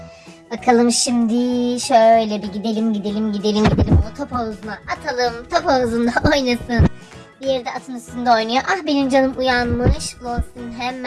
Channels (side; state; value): both; identical; correlation 1.00